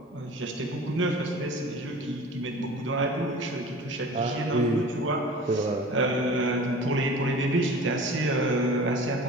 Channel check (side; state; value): both; normal; correlation 0.41